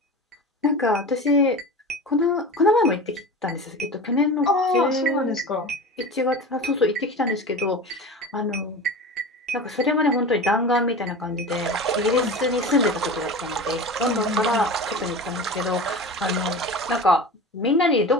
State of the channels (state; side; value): normal; both; correlation 0.32